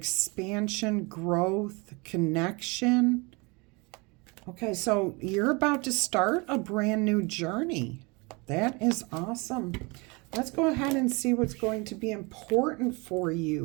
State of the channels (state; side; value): quieter; left; 28.0 dB